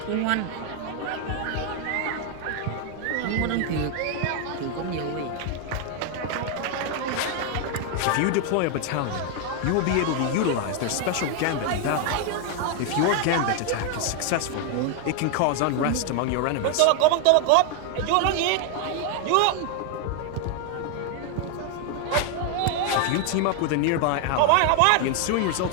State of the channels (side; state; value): both; different; correlation 0.00